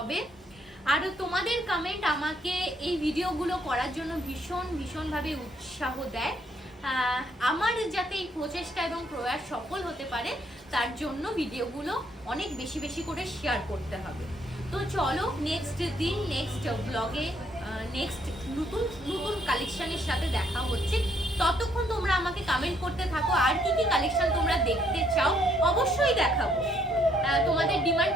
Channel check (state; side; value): normal; both; correlation 0.69